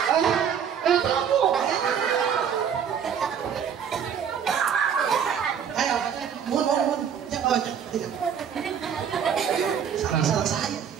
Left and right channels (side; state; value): left; quieter; 8.0 dB